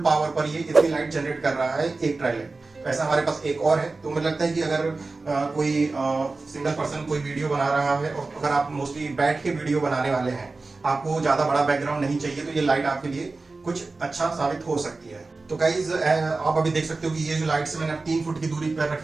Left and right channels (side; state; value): left; quieter; 3.6 dB